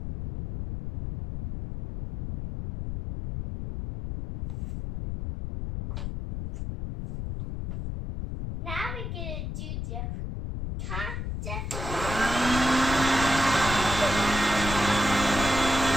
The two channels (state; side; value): noise; left; rumble, 5 dB below the sound